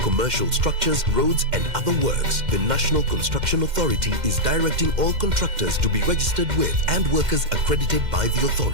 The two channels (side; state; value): left; late; 2.1 ms